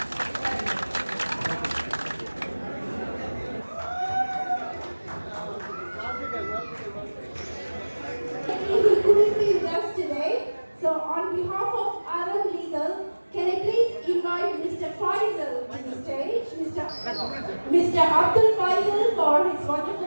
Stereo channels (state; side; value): inverted; both; correlation -1.00